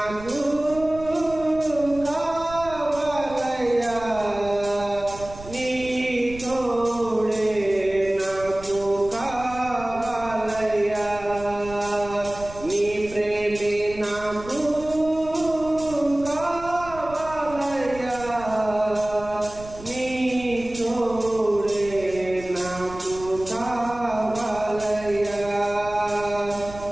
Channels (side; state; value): right; noise; rumble, 16 dB below the sound